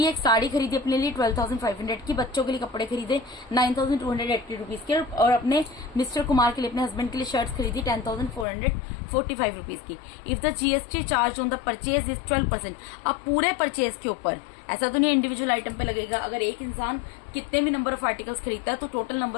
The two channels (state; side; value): drops out; right; at 8.5 s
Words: एक साड़ी खरीदी अपने लिए 12,500 की, बच्चों के लिए कपड़े खरीदे 9,280 रुपीज के, और अपने मिस्टर कुमार के लिए, अपने हस्बैंड के लिए शर्ट्स खरीदी 10,445 रुपीज की। If the GST charge on the purchase is 12%। अब पूरे परचेज के ऊपर, ऐसा तो नहीं इंडिविजुअल आइटम पे लगेगा। अगर एक इंसान कितने भी नंबर ऑफ आर्टिकल्स खरीदता है तो टोटल